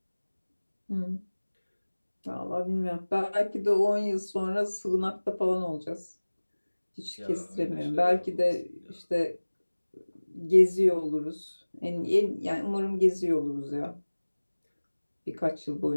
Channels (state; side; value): inverted; both; correlation -1.00